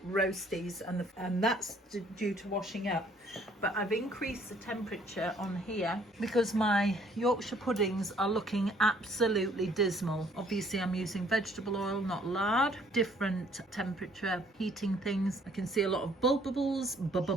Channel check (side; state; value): both; normal; correlation 0.61